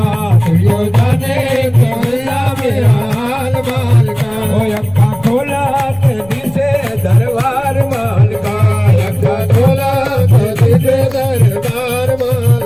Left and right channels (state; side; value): noise; left; rumble, 23 dB below the sound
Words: तुझो जाने कि हुंदा मेरा हाल माल का। ओ अक्का खोला के दिसे दरबार माल का, अक्का खोला के दिसे दरबार माल